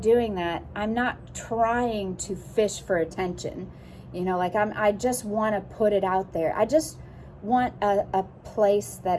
that? I'm not trying to fish for attention. I just want to put it out there. I just want a place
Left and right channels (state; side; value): identical; both; correlation 1.00